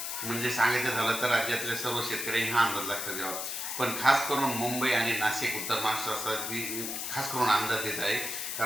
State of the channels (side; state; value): left; noise; hiss, 4 dB below the sound